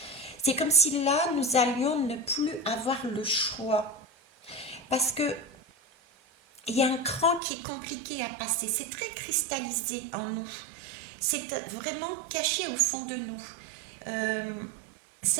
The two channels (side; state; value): left; drops out; at 7.4 s